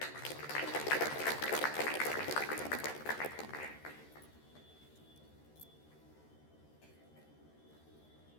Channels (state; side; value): late; right; 13 ms